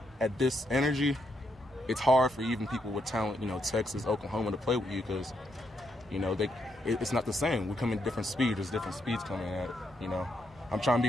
at this energy, it's hard for even people with talent, you know, Texas, Oklahoma, to play with you because, you know, it's not the same. We come in different speeds. There's different speeds coming at it, you know. I'm trying to be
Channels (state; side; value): normal; both; correlation 0.78